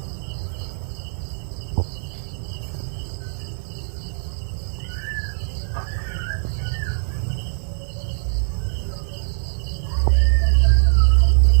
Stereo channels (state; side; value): silent; left; digital silence